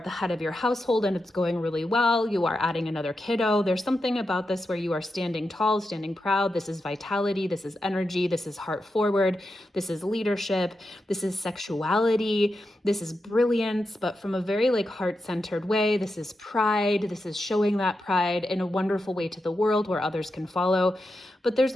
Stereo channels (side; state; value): both; normal; correlation 0.88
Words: head of your household and it's going really well, you are adding another kiddo. There's something about this where you are standing tall, standing proud. This is vitality, this is energy, this is heart forward, this is leadership, this is sexuality, this is brilliance, but from a very like heart-centered way. This is pride, this is showing that pride in a wonderful way to the world where others can follow. But there's